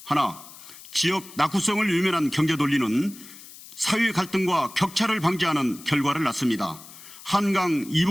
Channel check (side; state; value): left; noise; hiss, 18 dB below the sound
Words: 하나, 지역 낙후성을 유면한 경제 논리는 사회 갈등과 격차를 방지하는 결과를 낳습니다. 한강